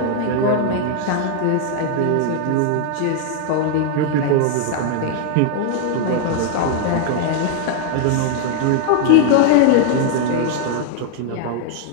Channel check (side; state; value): both; different; correlation 0.00